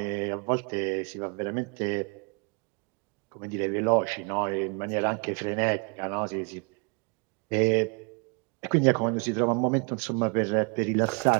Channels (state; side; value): quieter; left; 34.8 dB